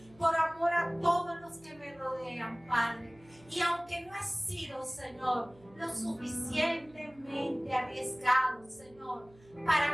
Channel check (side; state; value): right; noise; hum, 26 dB below the sound